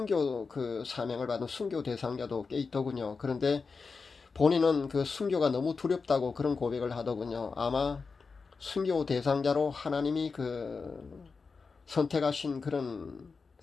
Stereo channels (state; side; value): quieter; right; 4.7 dB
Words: 그 사명을 받은 순교 대상자도 꽤 있더군요. 그런데 본인은 그 순교가 너무 두렵다고 그런 고백을 하더군요. 아마 순교 대상자로 하나님이 선택하신 그런